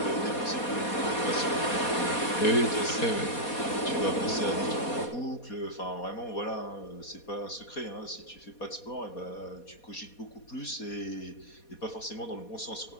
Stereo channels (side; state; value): right; late; 4.2 ms